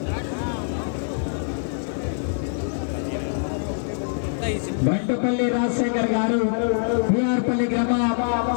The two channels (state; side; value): silent; right; digital silence